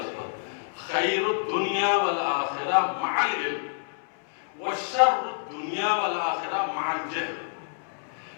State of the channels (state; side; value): silent; right; 60 dB below the other